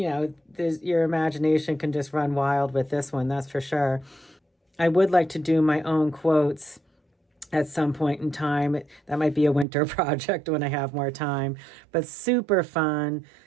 imagination can just run wild with this one, that's for sure. I would like to do my own quotes at some point in time. That might be a winter project when I have more time, but super fun,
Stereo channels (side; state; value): left; drops out; at 9.7 s